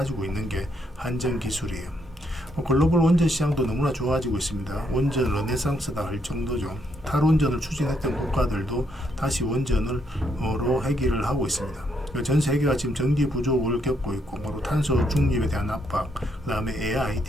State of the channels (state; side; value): normal; both; correlation 0.75